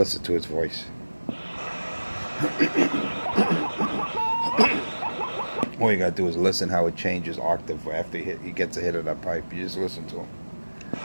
to his voice. All you gotta do is listen how it changes octave after he gets a hit of that pipe. You just listen to him.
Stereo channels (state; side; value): inverted; both; correlation -1.00